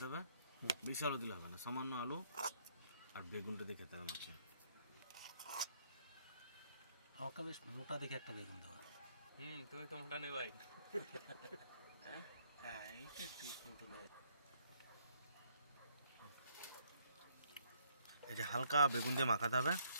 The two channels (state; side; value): inverted; both; correlation -0.68